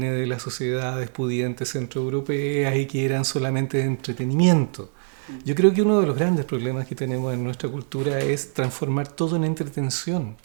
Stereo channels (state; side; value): silent; left; 59 dB below the other